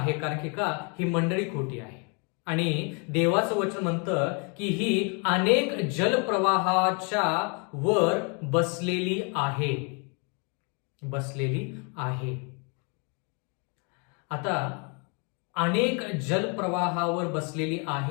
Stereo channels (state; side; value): quieter; right; 35.4 dB